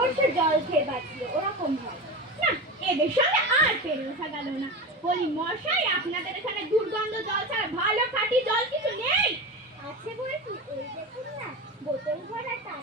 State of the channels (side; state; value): both; normal; correlation 0.25